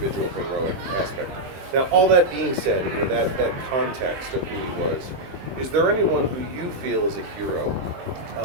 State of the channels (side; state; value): left; late; 23 ms